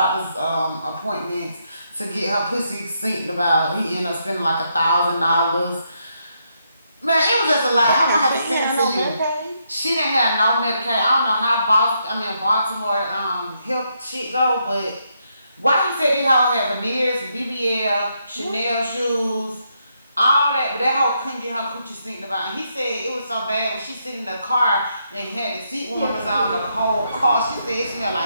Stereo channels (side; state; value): both; inverted; correlation -0.78